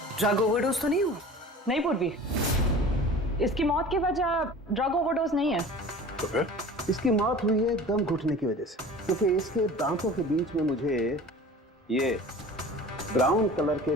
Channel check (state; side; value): normal; both; correlation 0.41